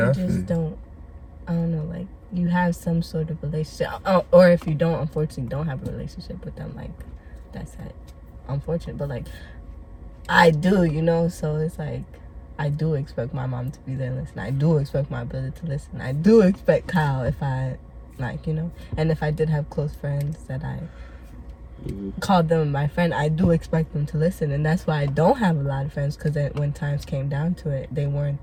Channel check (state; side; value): identical; both; correlation 1.00